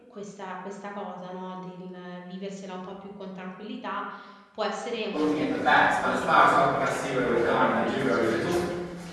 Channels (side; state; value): both; identical; correlation 1.00